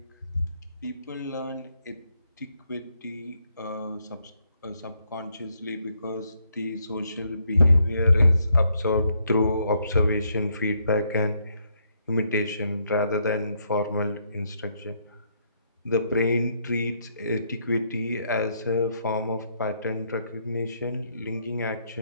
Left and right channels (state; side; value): inverted; both; correlation -0.74